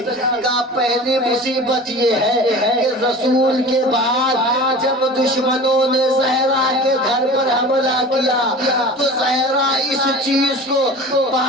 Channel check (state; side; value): normal; both; correlation 0.38